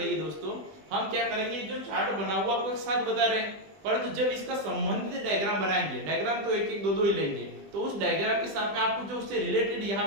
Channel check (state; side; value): late; left; 20 ms